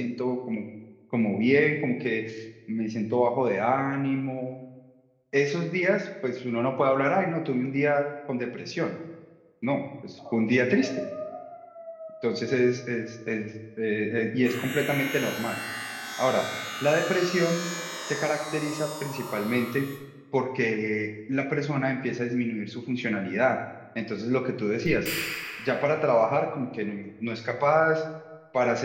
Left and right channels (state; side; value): identical; both; correlation 1.00